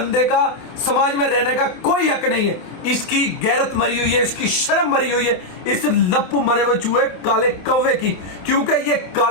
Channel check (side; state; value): right; late; 28 ms